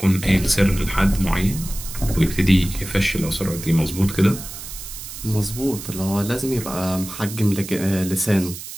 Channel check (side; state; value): right; noise; hiss, 11 dB below the sound